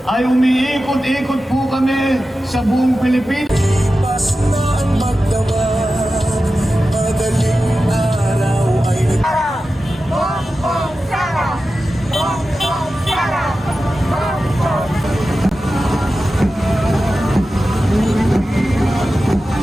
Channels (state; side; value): normal; both; correlation 0.93